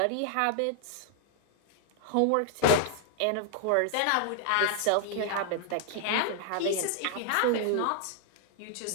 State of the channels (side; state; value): both; different; correlation 0.00